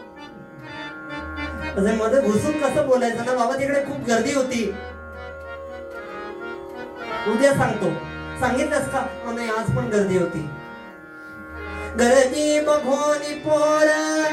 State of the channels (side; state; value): both; identical; correlation 1.00